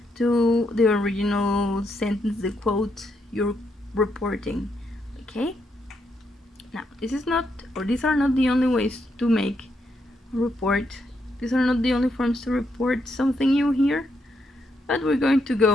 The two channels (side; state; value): both; normal; correlation 0.78